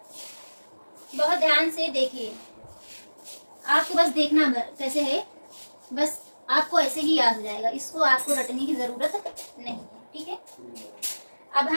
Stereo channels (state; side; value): inverted; both; correlation -1.00